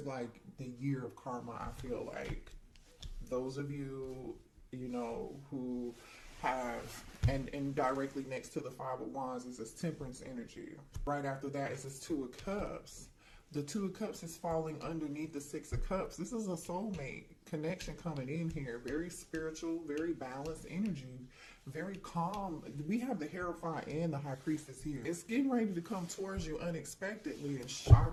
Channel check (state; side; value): identical; both; correlation 1.00